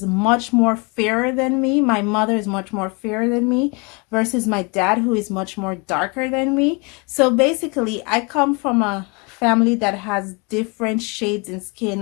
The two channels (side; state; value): right; quieter; 30.5 dB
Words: much more fairer than me. My mother is much more fairer than me versus my dad, who is much more darker than me. So basically, I come from a family that has different shades in